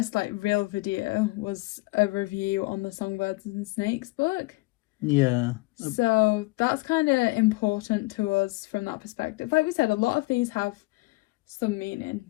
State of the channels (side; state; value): right; quieter; 22.9 dB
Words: like real video was a review on the Songbirds and Snakes book. Yeah. So that's kind of important to us from that perspective. Like we said, a lot of these have some meaning